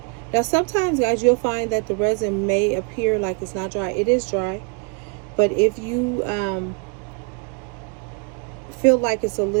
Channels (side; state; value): left; quieter; 34.4 dB